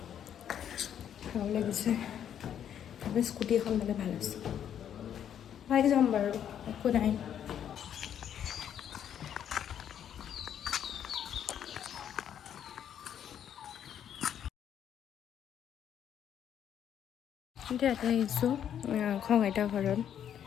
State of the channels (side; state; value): right; quieter; 9.4 dB